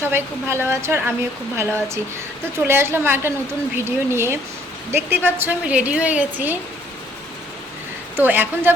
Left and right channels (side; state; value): both; normal; correlation 0.63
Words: সবাই খুব ভালো আছো আর আমিও খুব ভালো আছি। তো চলে আসলাম একটা নতুন ভিডিও নিয়ে। দেখতেই পাচ্ছ আমি রেডি হয়ে গেছি। তো এখন